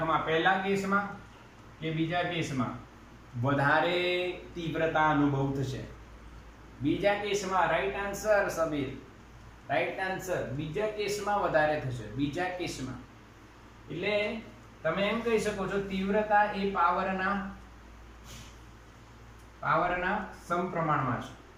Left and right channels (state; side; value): identical; both; correlation 1.00